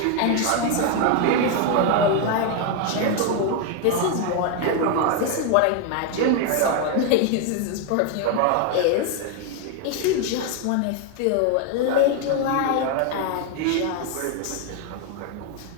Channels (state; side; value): different; both; correlation 0.01